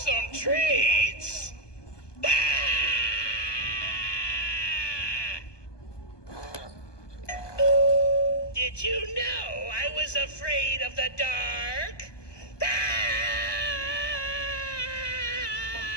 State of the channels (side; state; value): right; late; 1.2 ms